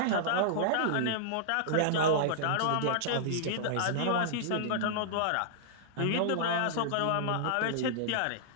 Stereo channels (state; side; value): different; both; correlation -0.01